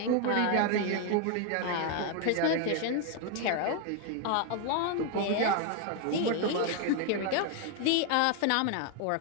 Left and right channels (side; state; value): both; different; correlation 0.01